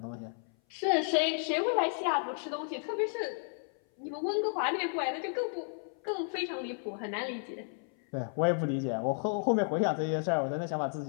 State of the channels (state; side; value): silent; right; 56 dB below the other